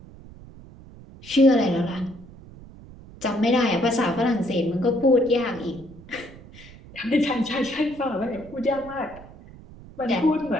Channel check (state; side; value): noise; right; rumble, 19 dB below the sound